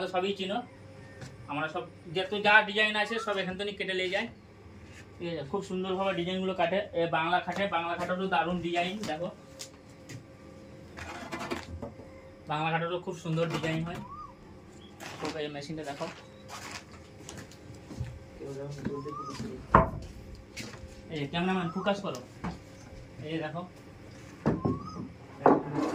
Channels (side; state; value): both; identical; correlation 1.00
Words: সবই চিনো। আমরা সব যা ডিজাইন আছে সব এখান থেকে কেটে নিয়ে যাই, ঠিক আছে। খুব সুন্দরভাবে ডিজাইনগুলো কাটে। বাংলা খাটেরও দারুণ ডিজাইন দেখো, বাংলা খাটেরও খুব সুন্দর ডিজাইন হয়। তো এই মেশিনটা দেখো, এই ক্যামেরাম্যান ফোকাস করো, এই দেখো